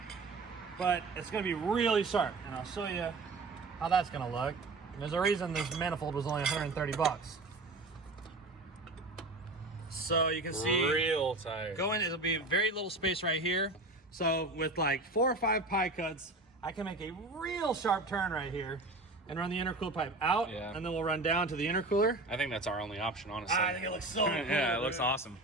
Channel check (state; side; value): quieter; left; 3.0 dB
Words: But it's gonna be really sharp, and I'll show you how that's gonna look. And there's a reason this manifold was only 130 bucks. So you can see real tight. it'll be very little space right here. So with like 4 or 5 pie cuts, I can make a real sharp turn right here and run the intercooler pipe out, and then we'll run down to the intercooler. I think that's our only option, honestly. I think it looks so cool. Yeah, it looks awesome.